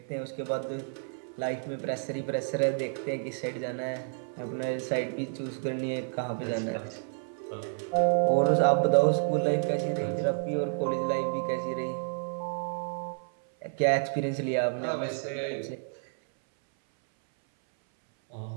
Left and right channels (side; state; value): left; silent; 58 dB below the other